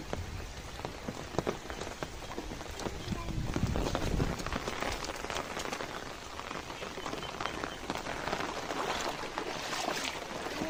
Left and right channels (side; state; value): both; identical; correlation 1.00